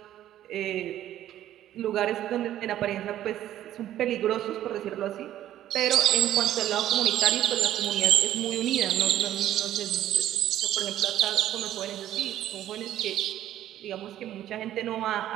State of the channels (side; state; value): left; quieter; 12.4 dB